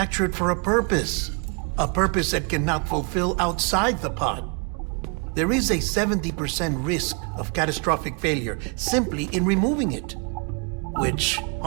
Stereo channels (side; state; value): left; quieter; 35.4 dB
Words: for a purpose. A purpose that cannot fulfill outside the pod. There is a 70% risk of catastrophic failure simply in removing it. Which